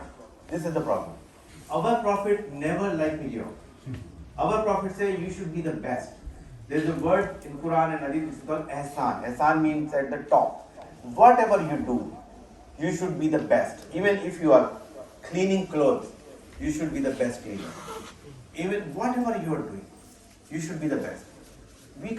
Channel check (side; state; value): both; identical; correlation 1.00